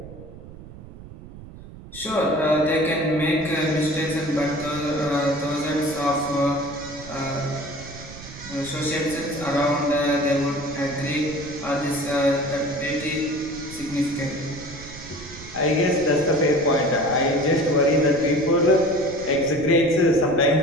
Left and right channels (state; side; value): noise; right; rumble, 16 dB below the sound